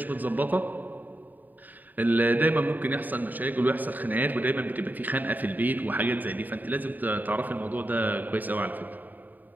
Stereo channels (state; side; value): late; left; 0.086 ms